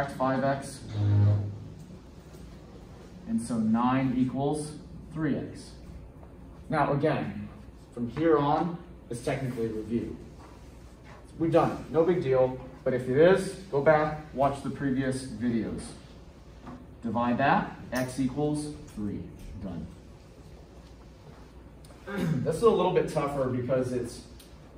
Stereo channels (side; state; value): both; identical; correlation 1.00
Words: 5x. And so 9 equals 3x. Now again, from here on, it's technically a review. We've done it, no big deal, but if it is, go back, watch the previous videos. Divide that, x equals 3, done. This is a little bit tougher because it's